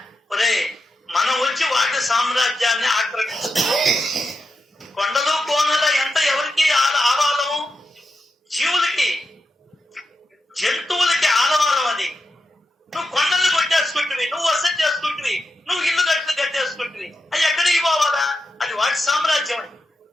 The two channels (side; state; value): both; normal; correlation 0.87